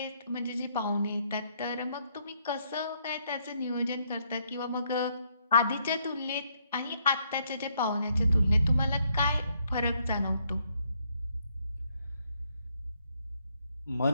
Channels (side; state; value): both; inverted; correlation -0.72